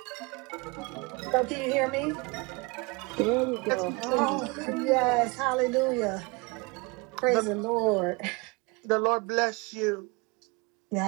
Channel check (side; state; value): left; quieter; 27.5 dB